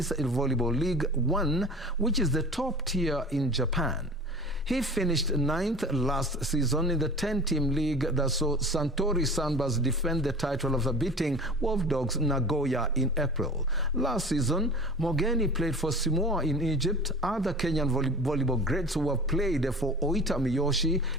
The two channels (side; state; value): both; normal; correlation 0.38